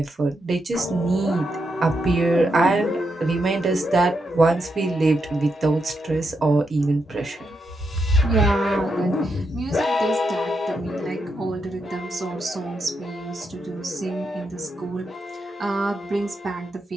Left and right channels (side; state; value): both; normal; correlation 0.83